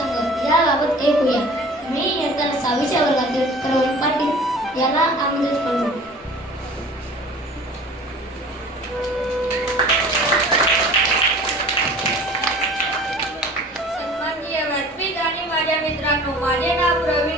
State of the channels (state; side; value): normal; both; correlation 0.45